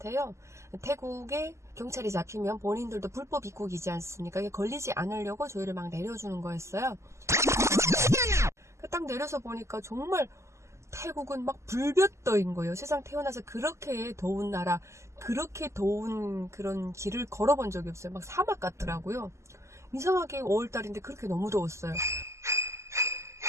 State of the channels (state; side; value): late; left; 0.13 ms